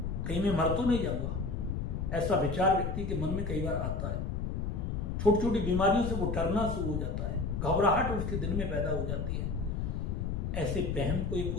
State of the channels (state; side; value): noise; left; rumble, 2 dB below the sound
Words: कहीं मैं मर तो नहीं जाऊंगा। ऐसा विचार व्यक्ति के मन में कई बार आता है। छोटी छोटी बीमारियों से वो डरना शुरू हो जाता है, घबराहट उसके दिल में पैदा हो जाती है। ऐसे वहम को ये